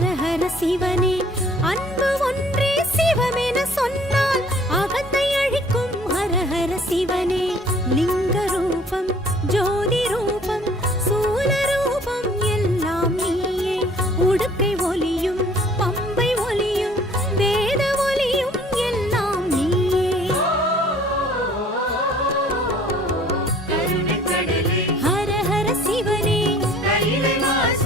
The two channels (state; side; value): normal; both; correlation 0.54